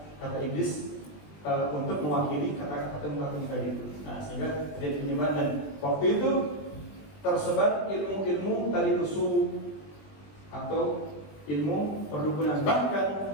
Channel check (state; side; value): late; right; 20 ms